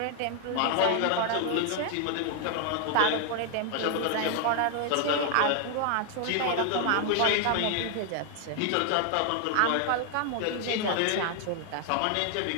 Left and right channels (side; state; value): both; different; correlation 0.00